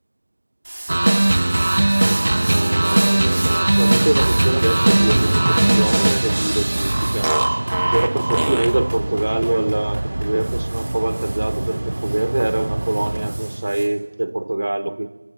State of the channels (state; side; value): inverted; both; correlation -1.00